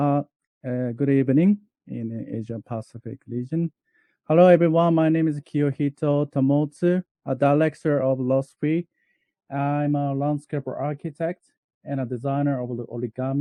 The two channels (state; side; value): identical; both; correlation 1.00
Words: evening in the Asia Pacific region. Hello, everyone. My name is Kiyohito Tomotsu, a director of Lost Free. I'm a landscape architect and a designer of the